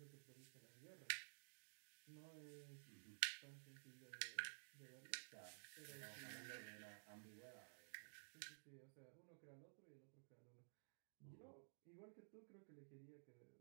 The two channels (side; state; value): left; silent; digital silence